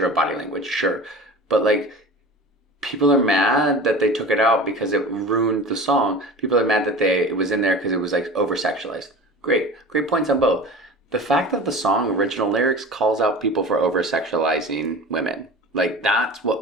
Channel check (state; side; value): normal; both; correlation 0.36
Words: of body language, sure. But, like, people are mad that they took it out because it ruined the song. People are mad that it was in there because it was, like, over-sexualized. Great points on both. The fact that the song original lyrics calls out people for over-sexualizing women, like, that's